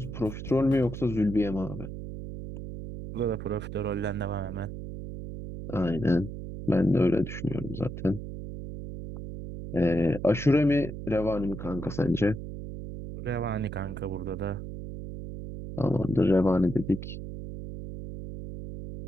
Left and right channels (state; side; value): noise; right; hum, 8 dB below the sound